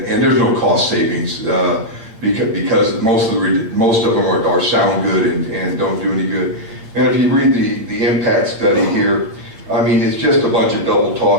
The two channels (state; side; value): late; left; 8.8 ms